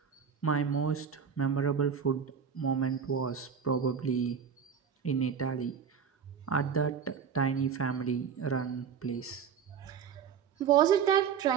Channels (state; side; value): quieter; left; 7.1 dB